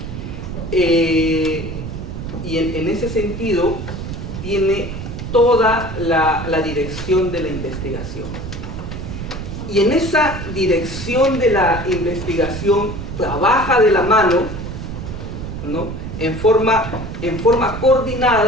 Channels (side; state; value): right; noise; rumble, 7 dB below the sound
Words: Y en ese sentido tiene toda la dirección de la investigación. Y en esa dirección de la investigación trabaja de la mano, ¿no?, en forma